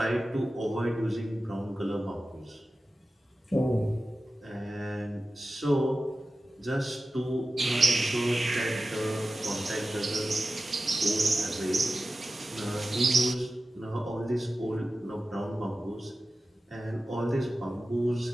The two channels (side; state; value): both; normal; correlation 0.94